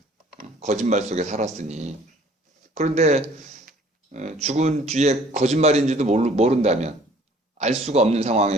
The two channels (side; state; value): both; normal; correlation 0.55